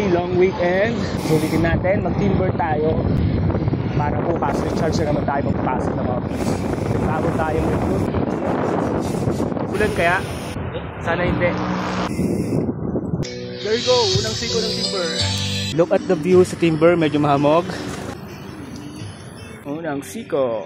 long weekend. Sulitin natin, mag-timber tayo. Para bukas, recharge na naman tayo magpasok ng office. Bago tayo mag-group. Ulan kaya? Sana hindi. There you go, unang siko ng timber. Look at the view sa timber, medyo mahamog. Unang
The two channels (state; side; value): identical; both; correlation 1.00